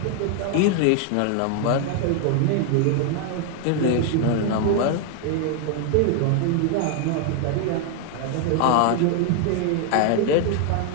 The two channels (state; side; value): different; both; correlation 0.00